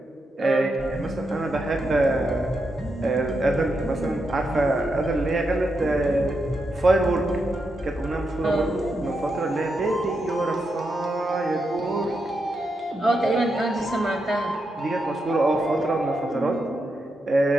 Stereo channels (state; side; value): normal; both; correlation 0.84